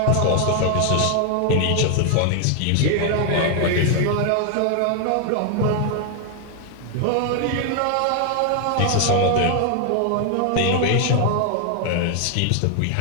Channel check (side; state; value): both; different; correlation 0.00